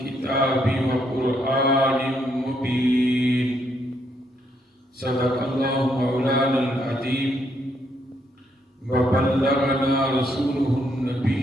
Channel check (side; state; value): both; normal; correlation 0.74